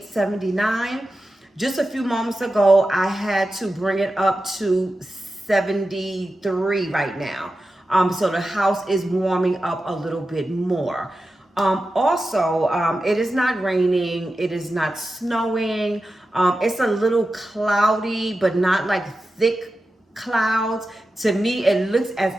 79. Just a few moments ago, I had to bring it up to 73 right now. So the house is warming up a little bit more. It is not raining, it is not snowing. It's a little cloudy, but not like thick clouds. To me, it looks as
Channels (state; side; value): normal; both; correlation 0.92